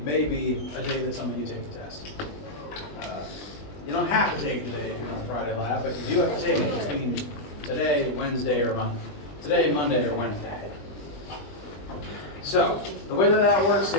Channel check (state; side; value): late; right; 20 ms